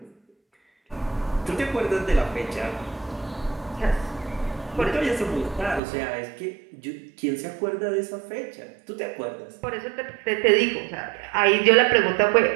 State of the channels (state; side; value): drops out; left; at 5.8 s